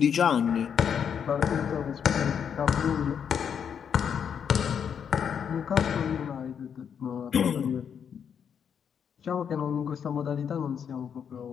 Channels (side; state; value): right; quieter; 7.7 dB